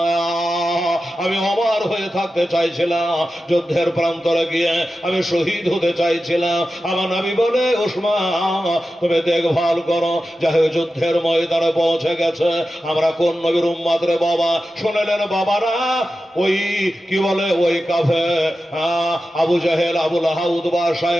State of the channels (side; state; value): both; normal; correlation 0.93